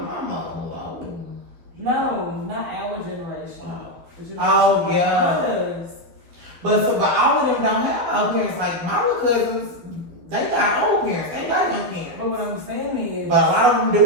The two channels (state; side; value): late; left; 12 ms